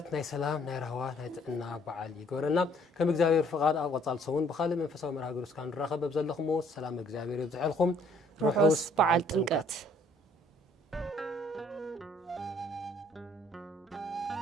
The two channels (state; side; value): normal; both; correlation 0.61